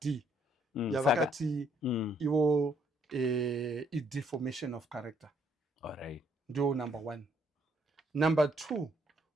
yavakati ivo deformation of character. Alright. Ndio number 1. Number 2,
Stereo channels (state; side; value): normal; both; correlation 0.69